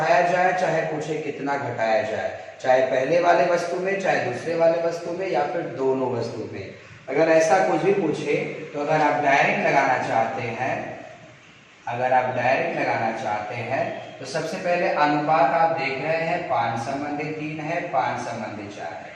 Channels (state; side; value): identical; both; correlation 1.00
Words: जाए, चाहे पूछे कितना घटाया जाए, चाहे पहले वाले वस्तु में, चाहे दूसरे वाले वस्तु में, या फिर दोनों वस्तु में। अगर ऐसा कुछ भी पूछे तो अगर आप डायरेक्ट लगाना चाहते हैं तो सबसे पहले अनुपात आप देख रहे हैं 5:3 है, 5:4 है।